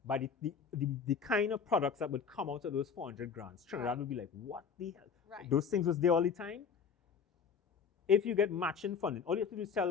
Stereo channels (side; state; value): right; quieter; 6.3 dB